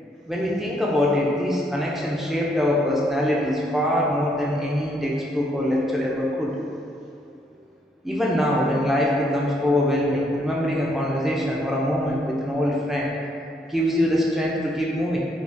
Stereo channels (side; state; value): both; normal; correlation 0.71